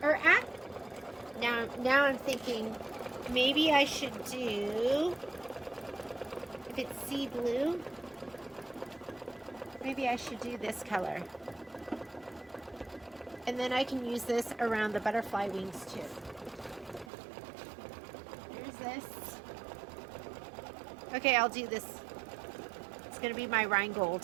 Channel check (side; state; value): left; drops out; at 17.1 s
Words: Or now I'm thinking maybe I should do, if it's sea blue, maybe I should do this color. And then I can use this around the butterfly wings too. Here's this. Okay, I'll do this. It's going to be my